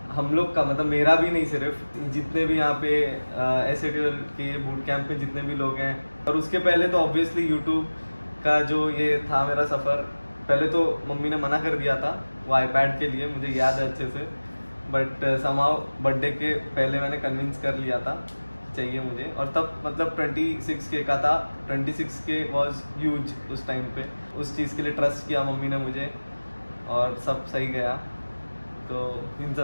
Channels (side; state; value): both; inverted; correlation -1.00